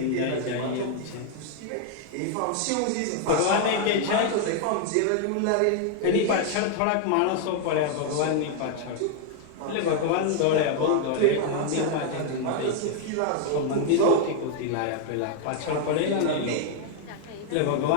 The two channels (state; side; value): different; both; correlation 0.00